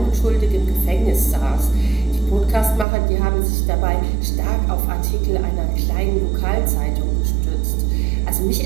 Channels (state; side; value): drops out; left; at 2.9 s